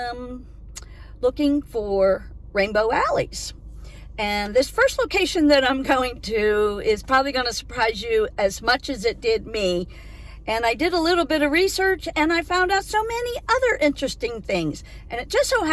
looking for rainbow alleys. And this first location that I'm going to is probably going to surprise you as much as it did me. And I did a little bit of research, and I found out so many other interesting things. And it just so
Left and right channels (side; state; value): both; identical; correlation 1.00